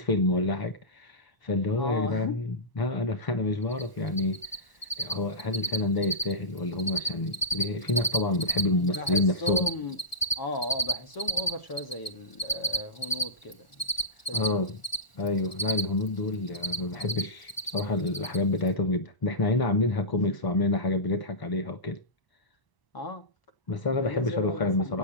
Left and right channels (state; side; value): late; right; 1.4 ms